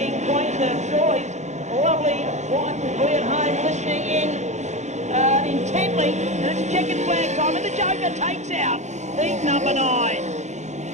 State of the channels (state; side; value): late; left; 0.34 ms